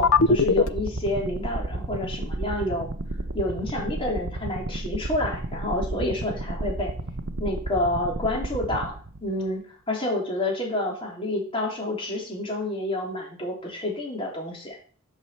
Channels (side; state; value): both; normal; correlation 0.21